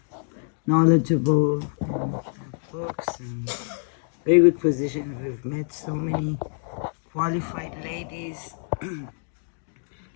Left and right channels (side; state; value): right; silent; digital silence